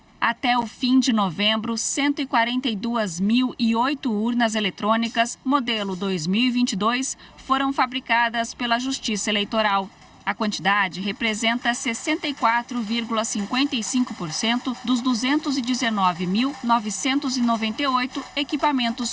Até o fim de novembro, 142.008 urnas eletrônicas, modelo 2022, foram fabricadas pela Justiça Eleitoral. A quantidade representa 64,55% dos 219.998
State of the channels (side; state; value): both; identical; correlation 1.00